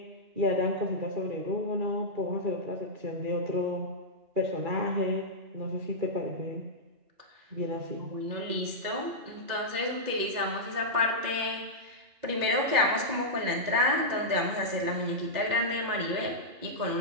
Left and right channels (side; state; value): left; late; 2.1 ms